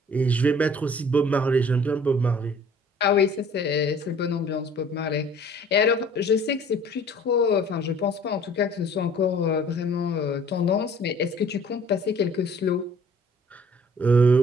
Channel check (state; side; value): normal; both; correlation 0.52